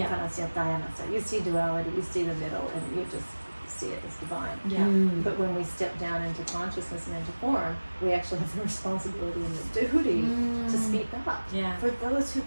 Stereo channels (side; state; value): both; inverted; correlation -1.00